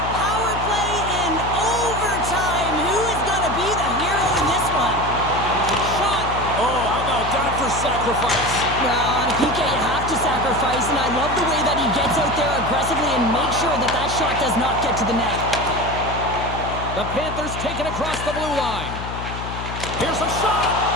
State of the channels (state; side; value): noise; left; hum, 8 dB below the sound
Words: power play in overtime. Who is going to be the hero in this one? Shot. Oh, how about that for sacrifice? Well, on a PK, you have to sacrifice, and I love the way that he gets out there aggressively and makes sure that that shot does not get to the net. The Panthers take it across the blue line. Here's a shot.